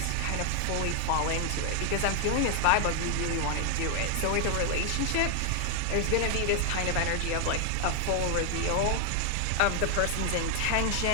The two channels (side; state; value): both; different; correlation 0.00